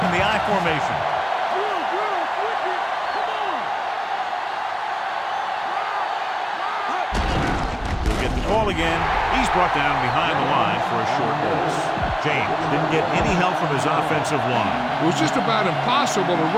in the I formation. He'll get the call again. He's brought down behind the line for a short loss. James didn't get any help from his offensive line. It was just about impossible to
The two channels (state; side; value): identical; both; correlation 1.00